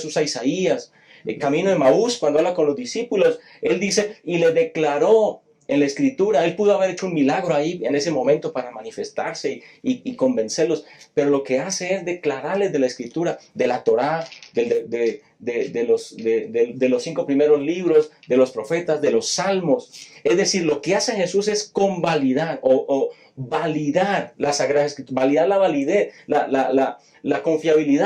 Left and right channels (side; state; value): both; identical; correlation 1.00